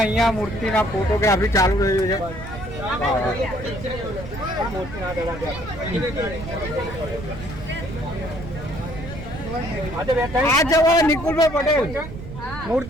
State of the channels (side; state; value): right; noise; rumble, 11 dB below the sound